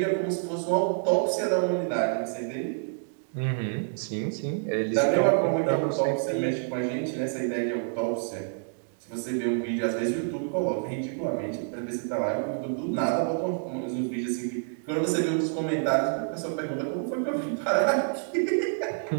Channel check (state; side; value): silent; left; digital silence